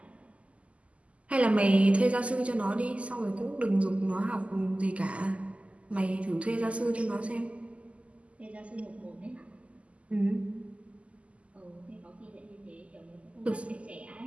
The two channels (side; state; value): left; late; 0.062 ms